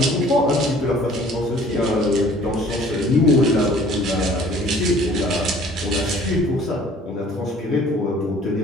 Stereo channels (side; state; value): both; normal; correlation 0.53